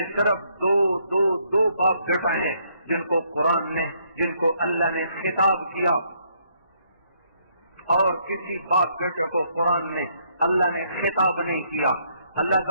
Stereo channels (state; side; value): inverted; both; correlation -0.70